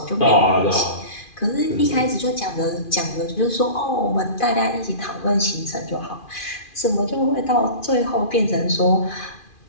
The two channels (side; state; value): right; late; 2.4 ms